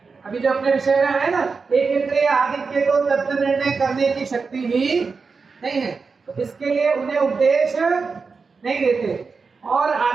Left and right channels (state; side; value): quieter; left; 4.8 dB